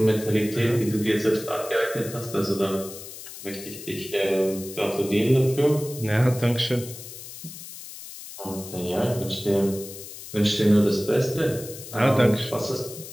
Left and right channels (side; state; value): left; noise; hiss, 13 dB below the sound